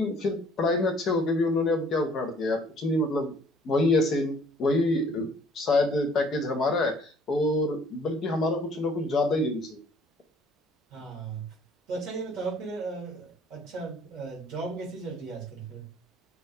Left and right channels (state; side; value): normal; both; correlation 0.58